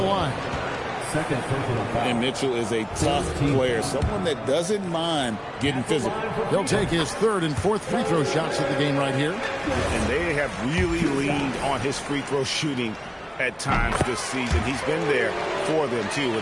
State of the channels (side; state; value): both; identical; correlation 1.00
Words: And Mitchell is a tough player, someone that doesn't mind getting physical. He'll take his 3rd and 4th free throw shots of the game right here. And they have really leaned on his free throw shooting at times this season. He's been there for them, too,